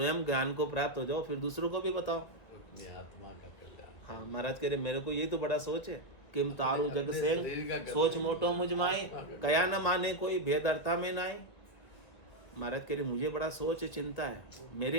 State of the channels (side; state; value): right; late; 2.0 ms